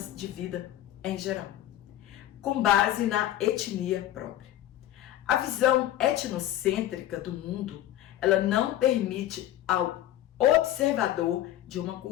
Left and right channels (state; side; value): quieter; right; 12.9 dB